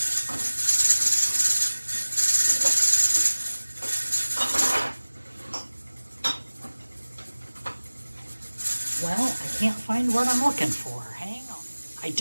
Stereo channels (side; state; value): both; inverted; correlation -1.00